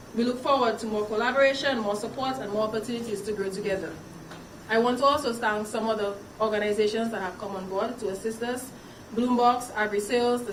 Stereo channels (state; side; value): identical; both; correlation 1.00